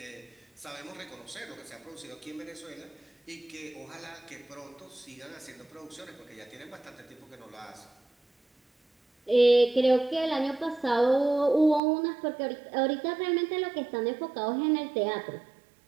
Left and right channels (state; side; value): drops out; left; at 11.8 s